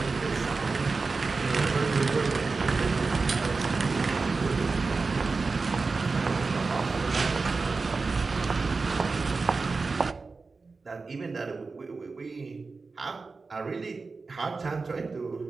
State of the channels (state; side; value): quieter; left; 4.1 dB